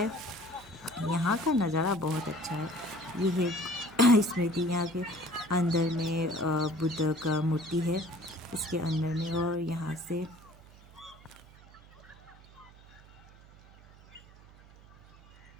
यहाँ का नज़ारा बहुत अच्छा है। ये है स्मृति, यहाँ के अंदर में बुद्ध का मूर्ति है इसके अंदर में। और यहाँ से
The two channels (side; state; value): right; noise; hum, 23 dB below the sound